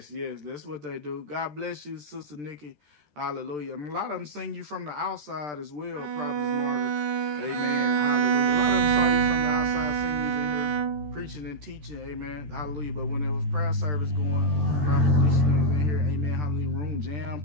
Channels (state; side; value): late; left; 13 ms